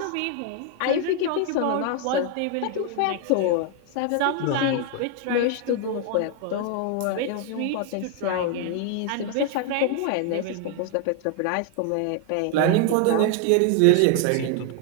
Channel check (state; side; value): different; both; correlation 0.00